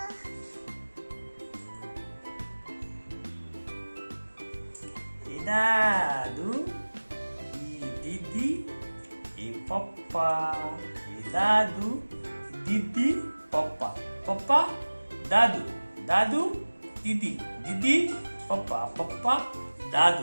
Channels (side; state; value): both; inverted; correlation -1.00